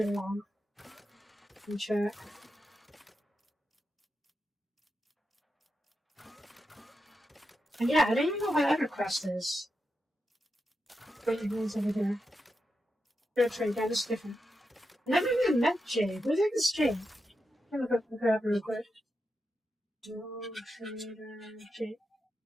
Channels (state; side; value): normal; both; correlation 0.87